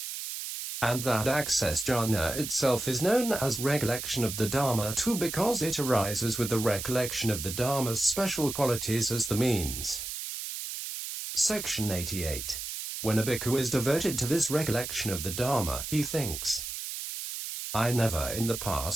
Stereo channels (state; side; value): noise; right; hiss, 6 dB below the sound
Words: And that access jhana itself is known as recollection of the Dharma too, because it arises with the recollection of the Dharma's special qualities as the means. Section 88. When a bhikkhu is devoted to this recollection of the Dharma, he thinks I never in the